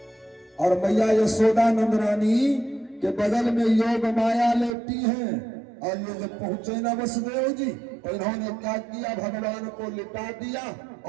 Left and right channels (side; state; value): left; drops out; at 4.8 s